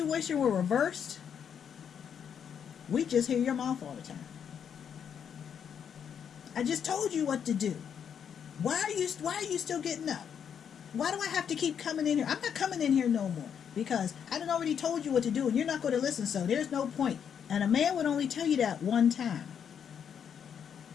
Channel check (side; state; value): right; quieter; 7.9 dB